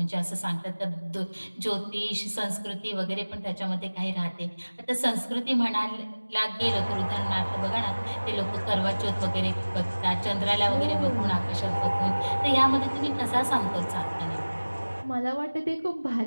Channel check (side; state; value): both; inverted; correlation -1.00